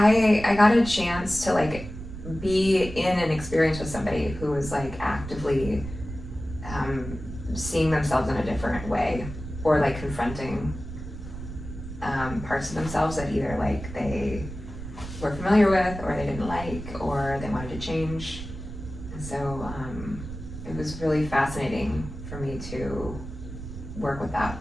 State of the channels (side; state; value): right; noise; rumble, 10 dB below the sound